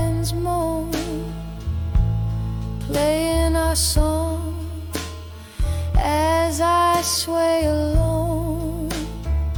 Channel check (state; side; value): identical; both; correlation 1.00